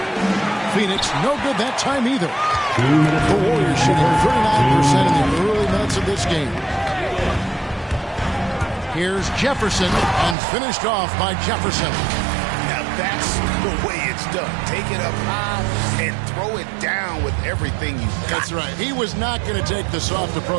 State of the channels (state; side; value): drops out; left; at 10.4 s